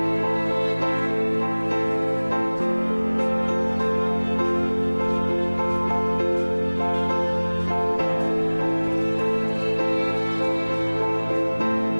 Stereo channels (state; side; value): inverted; both; correlation -1.00